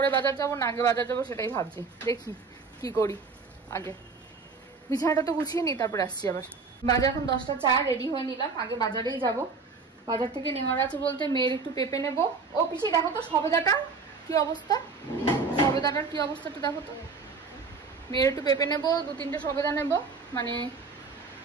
বাজার যাবো না আগে বাজার যাবো সেটাই ভাবছি। দেখি কি করি, আগে বিছানাটা তো গুছিয়ে নি, তারপরে আসছি আবার। বাজার এখন 10টা 4, রেডি হয়ে নিলাম। আগে বাজারেই যাব। বাজার থেকে নেওয়ার আছে বলতে মেয়ের একটু পেঁপে নেবো। ও পিছিয়ে দেখো তো সবেদাটা কি অবস্থা, সবেদাটার কি অবস্থাটা দেখো তো। মেয়ের একটু পেঁপে নেবো, 2-3টে সবেদা নেবো। মানে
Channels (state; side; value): quieter; left; 4.6 dB